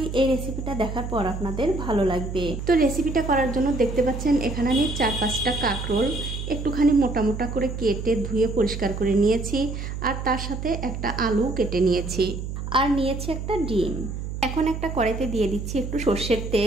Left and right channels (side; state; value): right; noise; hum, 6 dB below the sound